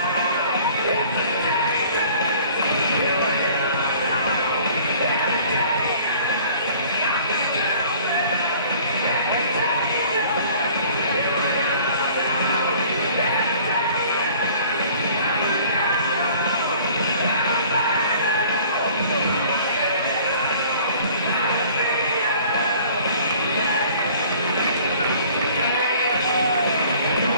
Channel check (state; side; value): inverted; both; correlation -0.52